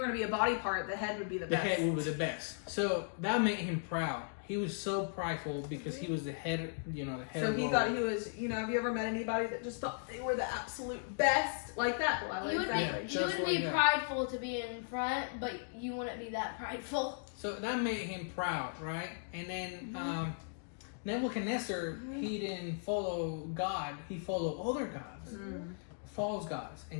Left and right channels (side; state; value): right; silent; digital silence